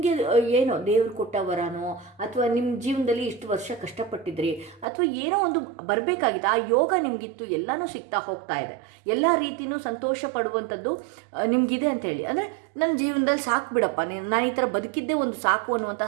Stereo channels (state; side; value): drops out; left; at 4.9 s